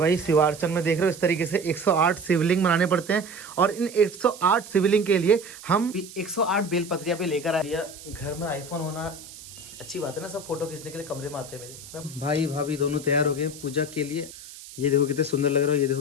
शिवार्चन में देख रहे हो इस तरीके से 108 शिवलिंग बनाने पड़ते हैं, और इन 108 शिवलिंग के लिए हम 108 बेलपत्रियां पे लेकर आए। घर में आईफोन होना अच्छी बात है ना, सब फोटो खींचने के लिए कमरे में आते हैं मेरे। भाई भाभी दोनों तैयार हो गए पूजा के लिए। ये देखो कितने सुंदर लग रहा है, ये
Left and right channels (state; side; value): noise; right; hiss, 16 dB below the sound